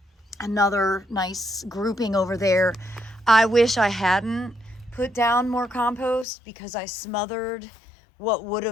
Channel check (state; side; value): drops out; right; at 6.2 s